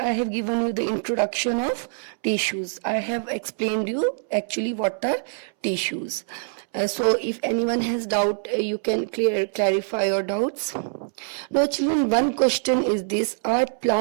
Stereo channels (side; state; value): left; silent; 62 dB below the other